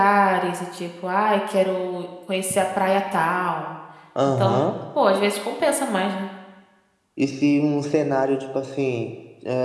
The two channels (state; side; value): identical; both; correlation 1.00